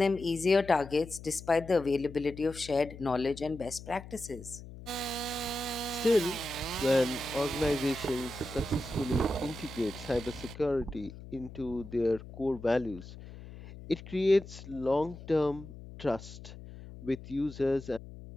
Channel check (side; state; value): left; noise; hum, 14 dB below the sound